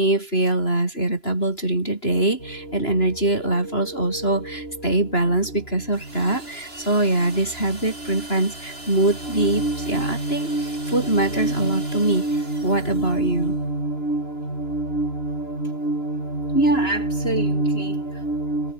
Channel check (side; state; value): right; late; 2.9 ms